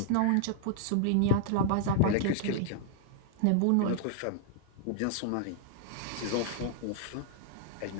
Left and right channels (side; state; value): both; different; correlation -0.01